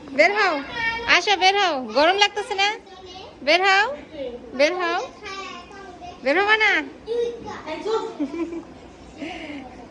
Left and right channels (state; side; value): identical; both; correlation 1.00